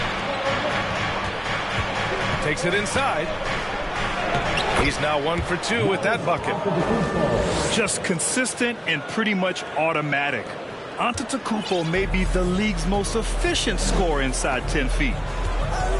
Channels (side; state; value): both; identical; correlation 1.00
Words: Takes it inside. He's now 1 for 2 with that bucket. Just consistent and pretty much automatic. Antetokounmpo may be the league's most efficient scorer inside 10 feet.